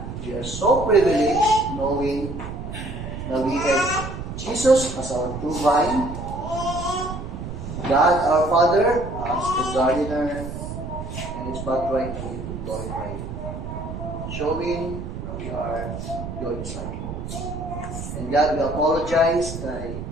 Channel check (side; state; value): right; noise; rumble, 7 dB below the sound